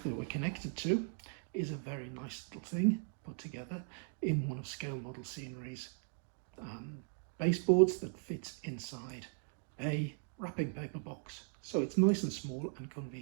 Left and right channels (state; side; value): silent; left; 52 dB below the other